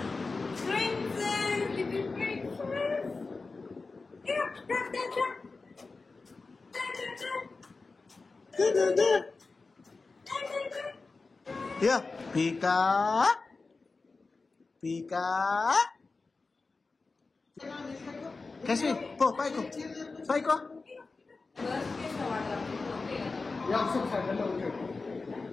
Yeah, Pika. Kashi, go, Paiko. Yeah, so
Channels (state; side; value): quieter; right; 3.9 dB